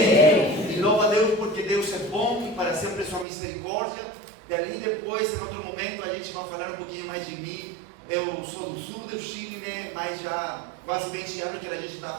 E louvo a Deus porque Deus é bom e para sempre sua misericórdia. Dali depois, em outro momento, a gente vai falar um pouquinho mais de mim. Eu sou do sul do Chile, né, mas já quase 20 anos que a gente está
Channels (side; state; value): left; drops out; at 3.2 s